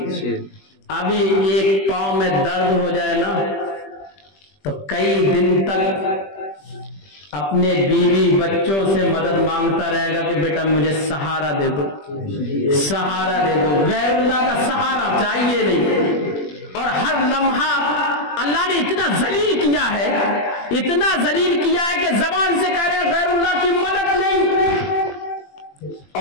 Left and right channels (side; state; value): right; late; 21 ms